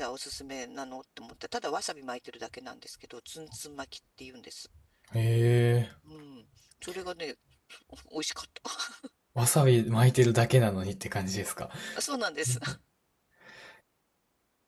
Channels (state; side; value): identical; both; correlation 1.00